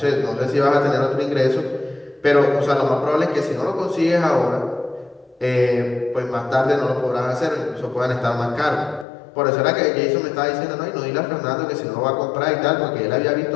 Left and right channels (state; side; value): drops out; right; at 9.1 s